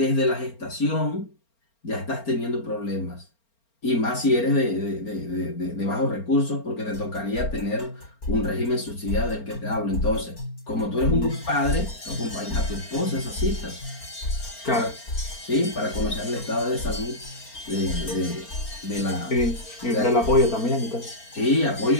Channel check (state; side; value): late; right; 4.4 ms